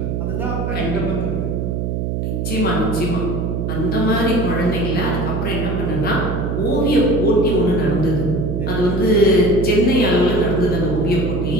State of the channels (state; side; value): noise; right; hum, 1 dB below the sound